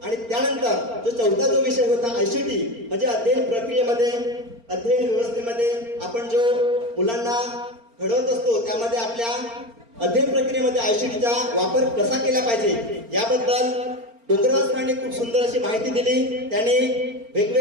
आणि त्यानंतर जो चौथा जो विषय होता ICT म्हणजे अध्ययन प्रक्रियेमध्ये अध्ययन व्यवस्थेमध्ये आपण जो मुलांना घडवत असतो त्यामध्ये आपल्या अध्ययन प्रक्रियेमध्ये ICTचा वापर कसा केला पाहिजे याबद्दल डोंगरवाल सरांनी खूप सुंदर अशी माहिती दिली। त्यांनी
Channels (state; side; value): late; left; 4.4 ms